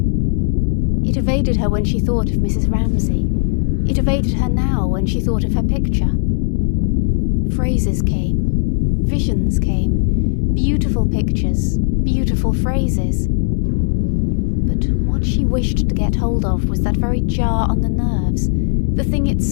It evaded her when she thought of Mrs. Ramsay. It evaded her now when she thought of her picture. Phrases came, visions came, beautiful pictures, beautiful phrases. But what she wished to get hold of was that very jar on the nerves, the thing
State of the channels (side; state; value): right; silent; digital silence